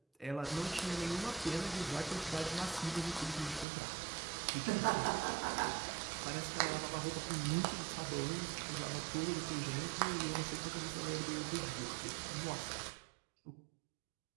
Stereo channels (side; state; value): left; drops out; at 3.7 s